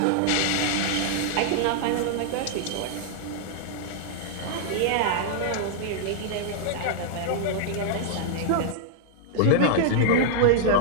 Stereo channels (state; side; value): different; both; correlation -0.01